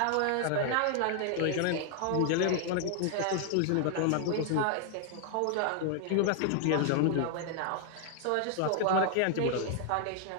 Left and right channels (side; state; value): both; different; correlation 0.00